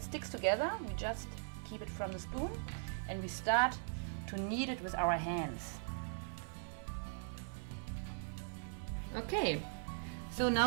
together, we just keep it from the spoon and we start to knead it with our hands. Okay, so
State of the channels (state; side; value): silent; left; 51 dB below the other